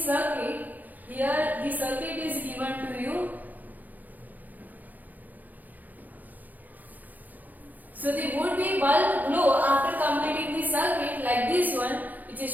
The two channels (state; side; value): late; left; 0.082 ms